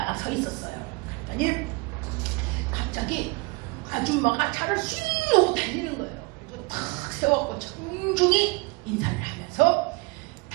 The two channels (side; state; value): left; quieter; 26.4 dB